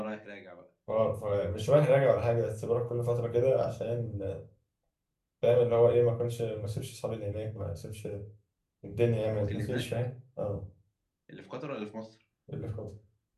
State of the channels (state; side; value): identical; both; correlation 1.00